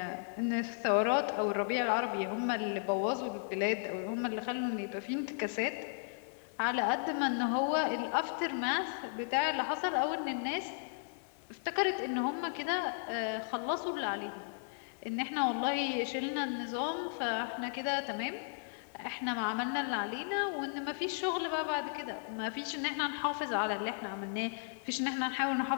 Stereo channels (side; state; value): right; silent; digital silence